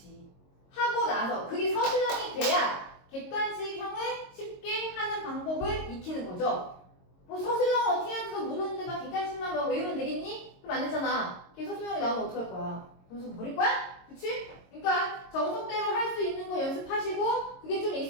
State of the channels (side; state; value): right; late; 22 ms